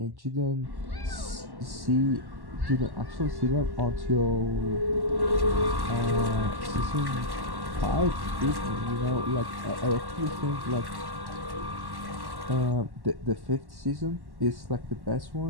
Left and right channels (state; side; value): late; left; 1.1 ms